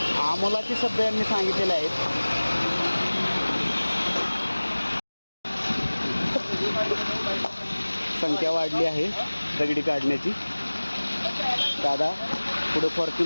आमोलाचे शब्द यांनी सांगितलेले आहेत. संख्या वाढली आहे दगडी काढण्याची. दादा पुढे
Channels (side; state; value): both; inverted; correlation -1.00